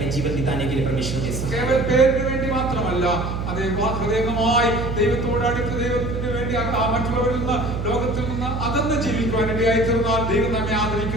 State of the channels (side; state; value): right; noise; hum, 4 dB below the sound